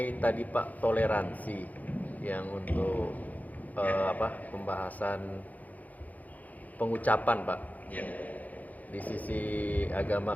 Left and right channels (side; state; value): right; late; 0.078 ms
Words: tadi Pak toleransi yang untuk pembahasan pengucapan Pak. Ya. Di sisi agama